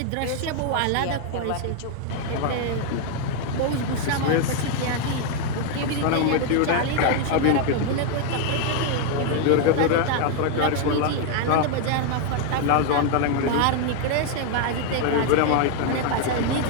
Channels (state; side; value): different; both; correlation 0.00